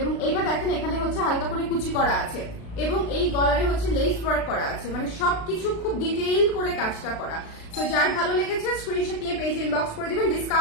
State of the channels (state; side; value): late; right; 36 ms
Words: এইটা দেখেন এখানে হচ্ছে হালকা করে কুচি করা আছে এবং এই গলারে হচ্ছে লেস ওয়ার্ক করা আছে, মানে সবকিছু খুব ডিটেইল করে কাজটা করা। তো যার ভালো লেগেছে স্ক্রিনশট নিয়ে পেজে ইনবক্স করে দিবেন।